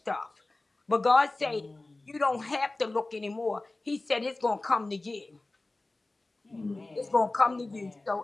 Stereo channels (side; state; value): right; quieter; 3.0 dB